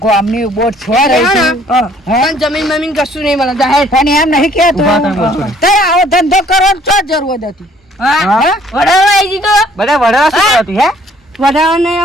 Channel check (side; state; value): both; normal; correlation 0.60